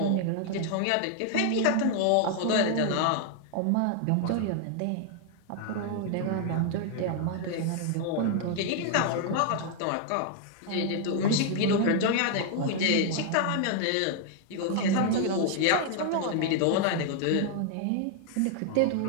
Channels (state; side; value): different; both; correlation 0.00